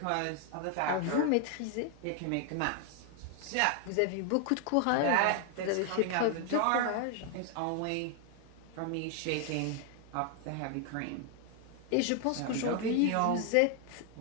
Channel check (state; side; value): different; both; correlation 0.00